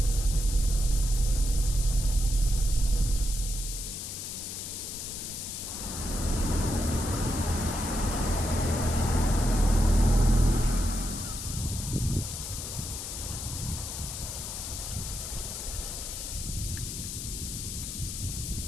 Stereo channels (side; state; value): left; noise; hiss, 6 dB below the sound